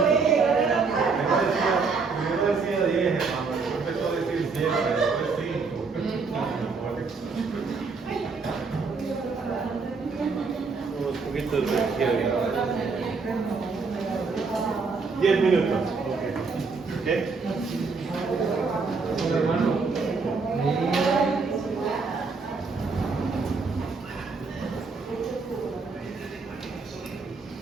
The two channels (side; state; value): left; quieter; 4.6 dB